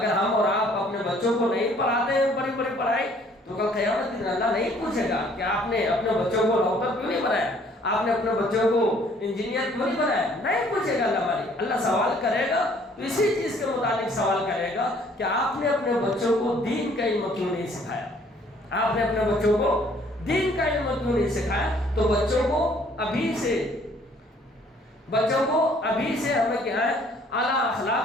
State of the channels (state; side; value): normal; both; correlation 0.59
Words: ہم اور آپ اپنے بچوں کو نہیں پڑھاتے ہیں بڑی بڑی پڑھائی تو کل قیامت کے دن اللہ نہیں پوچھے گا کہ آپ نے اپنے بچوں کو ڈاکٹر کیوں نہیں بنایا, آپ نے اپنے بچوں کو انجینئر کیوں نہیں بنایا, نہیں پوچھے گا اللہ مالک. اللہ سوال کرے گا تو اسی چیز کے متعلق سوال کرے گا کہ آپ نے اپنے بچوں کو دین کا علم کیوں نہیں سکھایا, آپ نے اپنے بچوں کو دین کا علم کیوں نہیں سکھایا. تو بچوں کو ابھی سے ہمیں کیا ہے, اعلیٰ